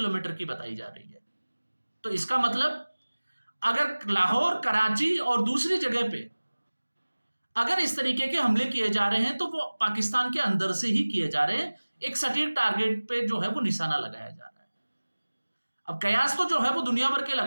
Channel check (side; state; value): both; inverted; correlation -1.00